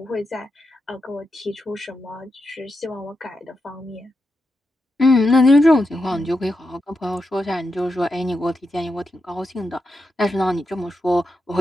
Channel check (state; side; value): normal; both; correlation 0.87